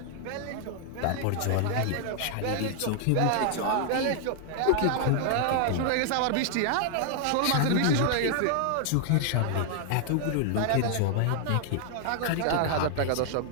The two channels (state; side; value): different; both; correlation 0.00